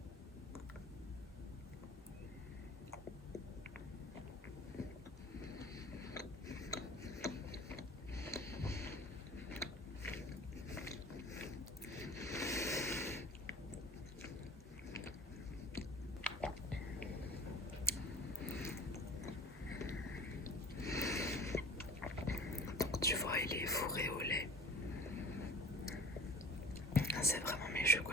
Donc tu vois, il est fourré au lait. C'est vraiment mes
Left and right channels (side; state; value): both; normal; correlation 0.42